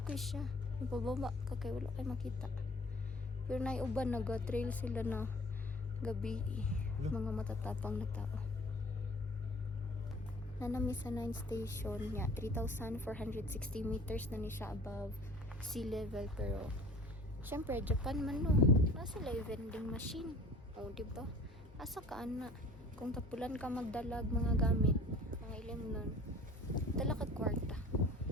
kay siya. Ipababa ka kay wala kay makita. Pero nay uban naga-trail sila na gabi. Mga matatapang na tao. Nanami sa 9th station niya, 3,460 meters na ni siya above sea level. Pero syempre Japan man no, nasa live vending machine. O diba, asa ka ana kung tapulan ka magdalag mga gamit, mga ilim nun, dala ka kwarta,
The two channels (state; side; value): normal; both; correlation 0.48